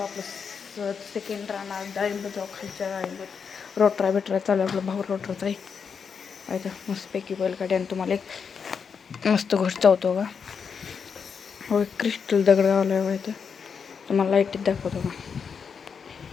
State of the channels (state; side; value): quieter; right; 6.3 dB